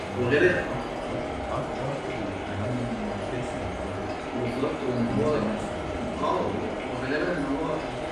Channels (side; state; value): both; identical; correlation 1.00